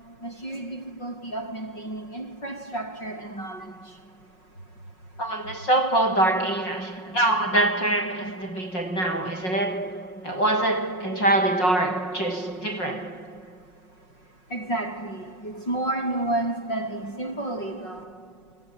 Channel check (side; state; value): right; late; 5.5 ms